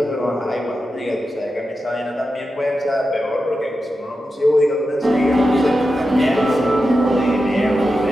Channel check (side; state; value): both; normal; correlation 0.90